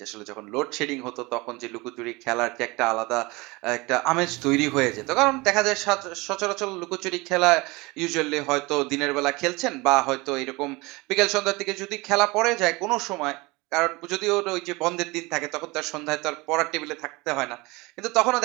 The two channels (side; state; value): left; quieter; 23.8 dB